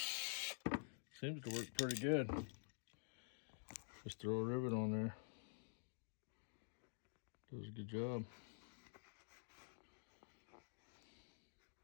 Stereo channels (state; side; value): silent; right; digital silence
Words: Seems to work pretty good. Just throw a rivet on there. Does a good job.